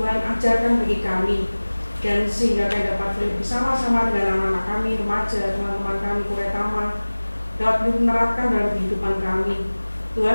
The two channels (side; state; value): both; inverted; correlation -1.00